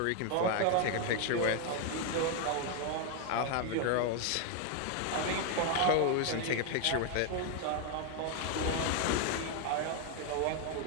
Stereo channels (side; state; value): both; different; correlation 0.01